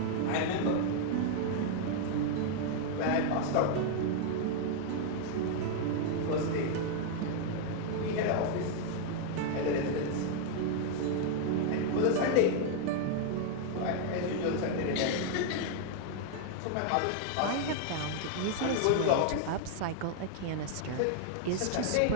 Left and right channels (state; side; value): different; both; correlation 0.00